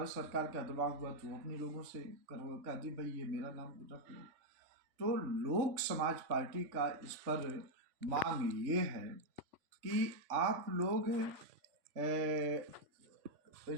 सरकार का दबाव हुआ तो अपने लोगों से कह दी भाई ये मेरा नाम रख लो। तो लोक समाज पार्टी का इस पर मांग ये है कि आप लोग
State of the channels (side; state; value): left; late; 3.5 ms